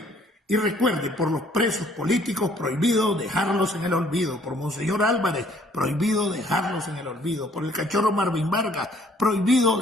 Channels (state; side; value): normal; both; correlation 0.60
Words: Y recuerde, por los presos políticos, prohibido dejarlos en el olvido. Por Monseñor Álvarez, prohibido dejarlos en el olvido. Por el cachorro Marvin Vargas, prohibido